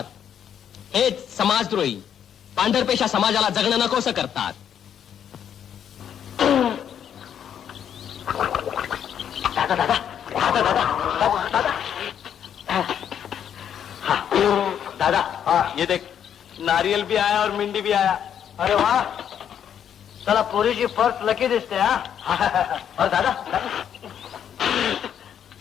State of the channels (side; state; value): right; quieter; 9.0 dB